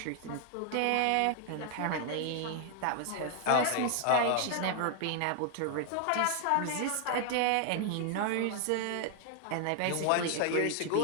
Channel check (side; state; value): both; different; correlation 0.00